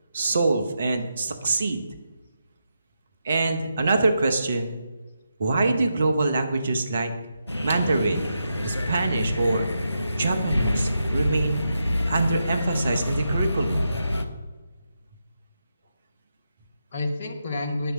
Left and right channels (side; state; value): both; inverted; correlation -0.85